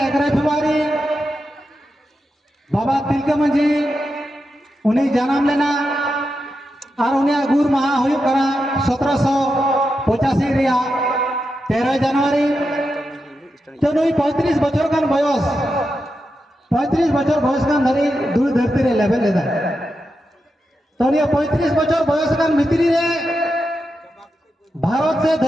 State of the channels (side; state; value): both; normal; correlation 0.88